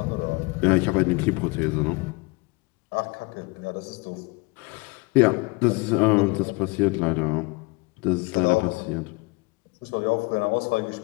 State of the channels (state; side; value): quieter; right; 26.0 dB